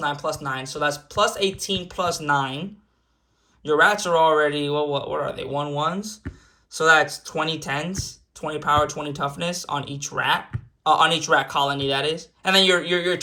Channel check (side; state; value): both; identical; correlation 1.00